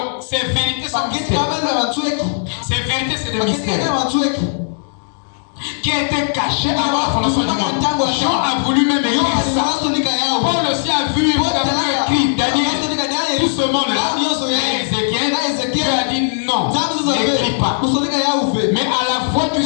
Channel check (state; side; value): silent; right; digital silence